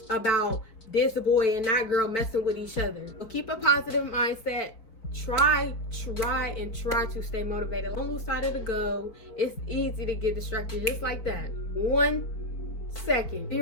about this boy and that girl messing with each other. So keep a positive mindset. Try to stay motivated. Don't lose sight of the goal. It's easy to get distracted just like that. 1 second,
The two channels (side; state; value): right; late; 4.6 ms